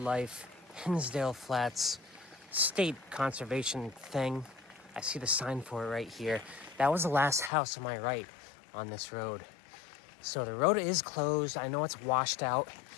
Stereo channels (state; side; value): drops out; right; at 7.5 s